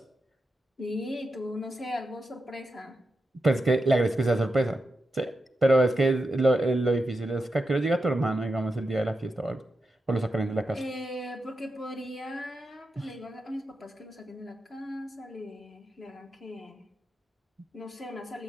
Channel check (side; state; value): both; normal; correlation 0.88